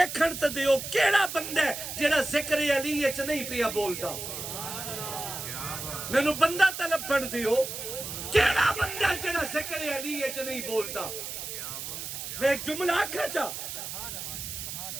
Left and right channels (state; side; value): noise; right; hiss, 7 dB below the sound